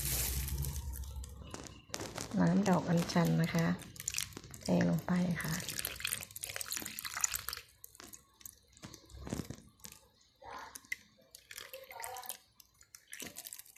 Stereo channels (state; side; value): identical; both; correlation 1.00